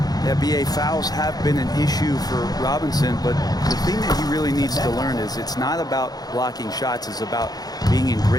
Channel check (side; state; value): right; late; 0.19 ms